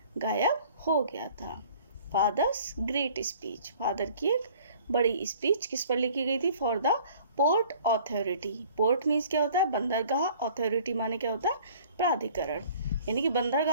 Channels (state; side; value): inverted; both; correlation -0.52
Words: गायब हो गया था। फादर्स ग्रेट स्पीच, फादर की एक बड़ी स्पीच किस पर लिखी गई थी, for the port authority. Port means क्या होता है, बंदरगाह, ऑथोरिटी माने क्या होता है, प्राधिकरण, यानी कि